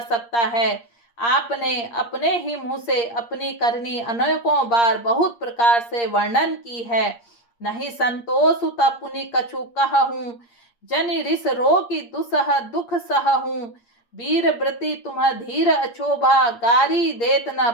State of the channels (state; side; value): late; right; 8.6 ms